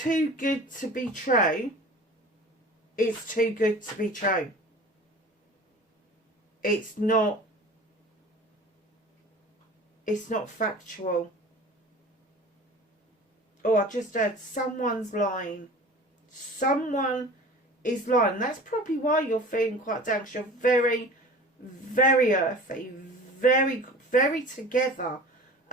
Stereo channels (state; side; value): normal; both; correlation 0.40